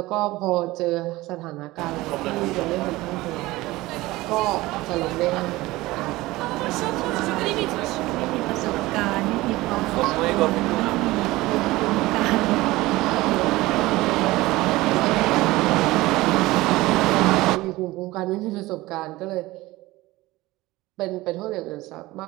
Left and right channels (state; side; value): quieter; left; 19.1 dB